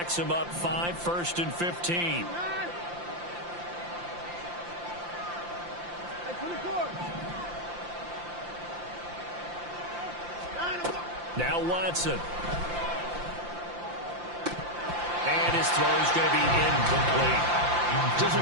him up 5, 1st and 15. Now Watson. And his throw is going to be incomplete. Just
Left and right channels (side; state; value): left; late; 5.8 ms